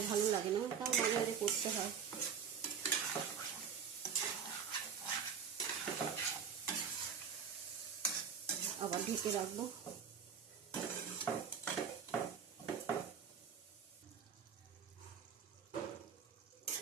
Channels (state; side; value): quieter; left; 7.0 dB